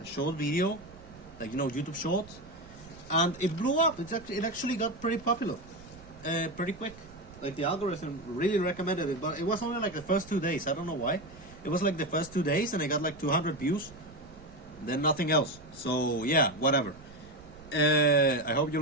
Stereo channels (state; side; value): noise; right; rumble, 21 dB below the sound